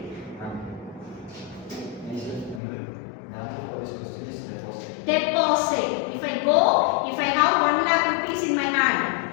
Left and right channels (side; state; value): right; drops out; at 2.6 s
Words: The answer for this question is deposit. Deposit. If I have 1 lakh rupees in my hand,